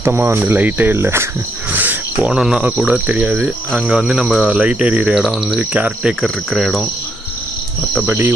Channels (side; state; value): both; normal; correlation 0.75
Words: வந்து லைட்டே இல்லை. போனோன்னா கூட தெரியாது. அங்கே வந்து நம்ம லைட் எரியிற இடம் வந்து கேர்டேக்கர் இருக்கிற இடம். மற்றபடி